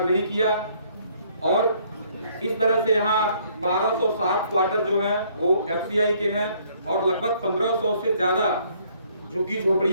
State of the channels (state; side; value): inverted; both; correlation -0.64